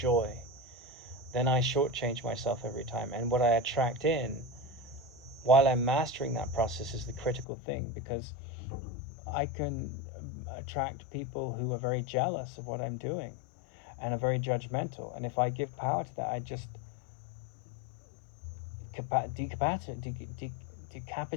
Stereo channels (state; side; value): drops out; right; at 7.5 s